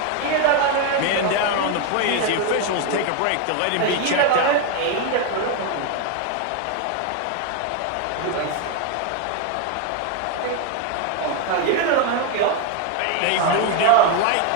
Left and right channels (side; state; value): both; different; correlation 0.01